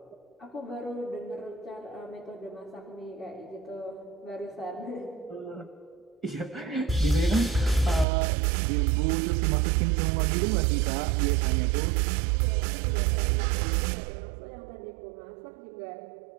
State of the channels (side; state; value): left; drops out; at 8.1 s